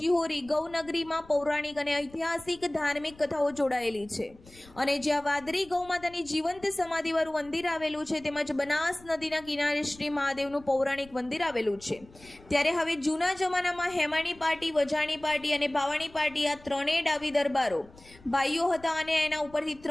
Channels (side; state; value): left; noise; rumble, 23 dB below the sound